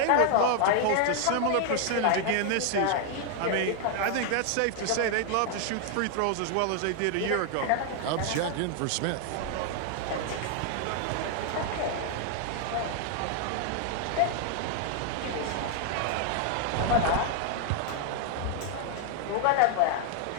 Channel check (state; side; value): different; both; correlation 0.00